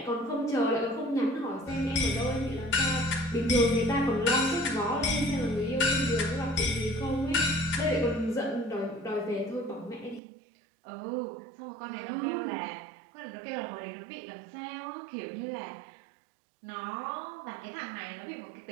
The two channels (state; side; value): drops out; left; at 10.2 s